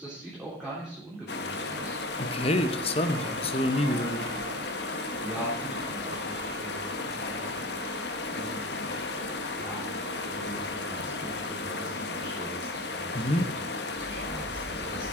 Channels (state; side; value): normal; both; correlation 0.31